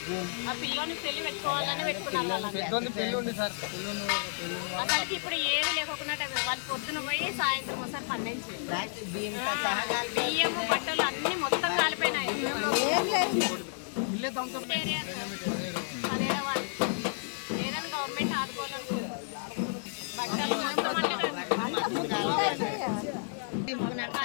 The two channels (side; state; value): right; silent; digital silence